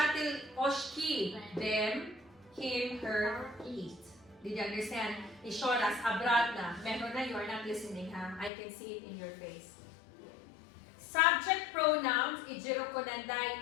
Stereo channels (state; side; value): drops out; right; at 8.5 s